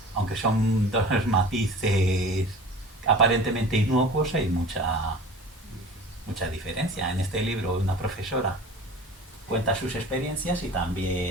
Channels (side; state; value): both; normal; correlation 0.40